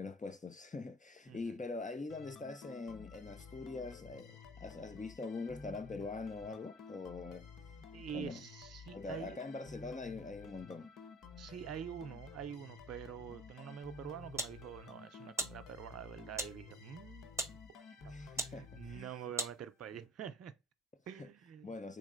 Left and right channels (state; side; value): normal; both; correlation 0.51